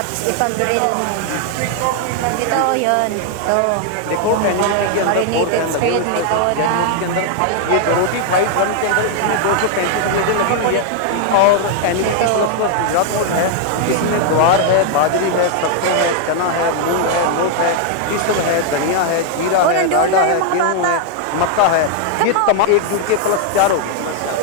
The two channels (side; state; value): both; different; correlation 0.00